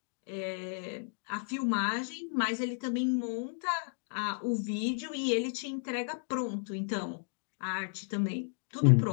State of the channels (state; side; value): silent; right; digital silence